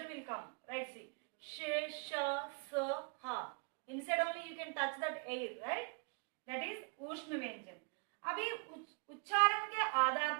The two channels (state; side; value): quieter; left; 36.5 dB